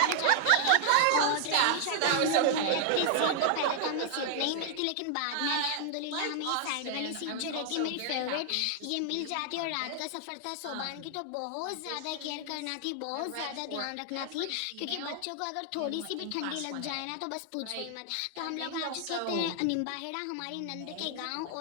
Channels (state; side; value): different; both; correlation 0.00